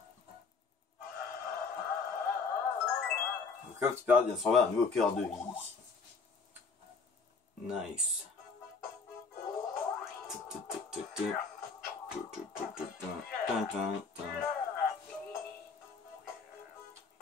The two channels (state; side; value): quieter; right; 4.7 dB